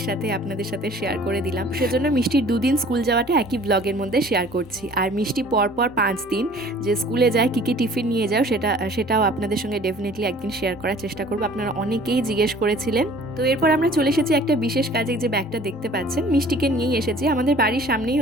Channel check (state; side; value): noise; right; rumble, 30 dB below the sound